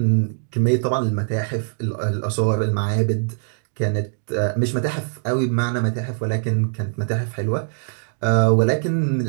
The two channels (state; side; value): silent; left; digital silence